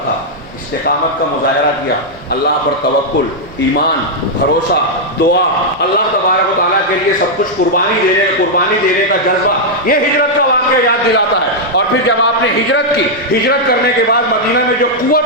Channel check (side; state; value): both; normal; correlation -0.04